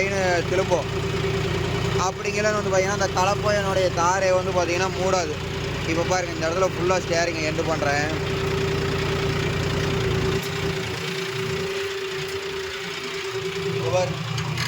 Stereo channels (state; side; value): identical; both; correlation 1.00